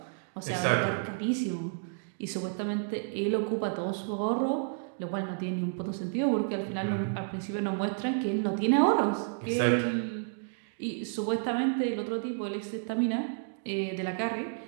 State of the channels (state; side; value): silent; left; digital silence